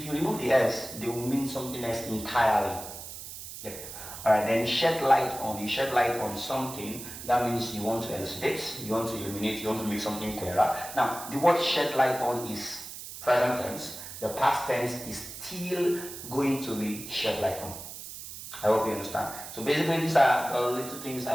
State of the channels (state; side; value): noise; right; hiss, 11 dB below the sound